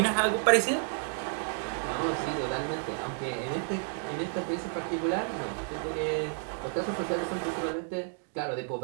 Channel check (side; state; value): left; silent; 57 dB below the other